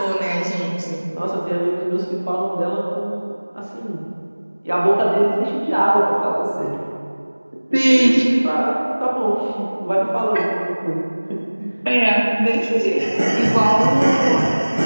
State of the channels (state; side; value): inverted; both; correlation -1.00